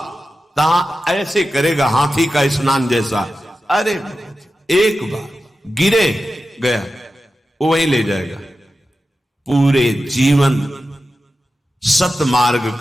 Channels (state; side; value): normal; both; correlation 0.92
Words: तहां ऐसे करेगा हाथी का स्नान जैसा। अरे एक बार गिरे गया, वो वहीं ले जाएगा। पूरे जीवन सतमार्ग